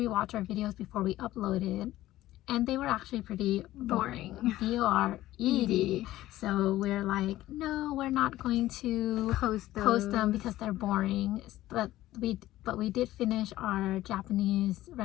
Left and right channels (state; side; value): quieter; right; 15.3 dB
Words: our videos before we upload it, and they were actually pretty boring. B-O-R-E-D. So we're like, no, we're not going to post them because they're boring. But we did finish our Japanese